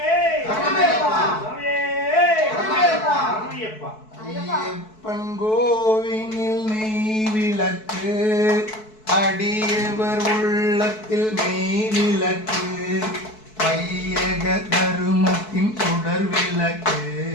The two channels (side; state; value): right; late; 4.6 ms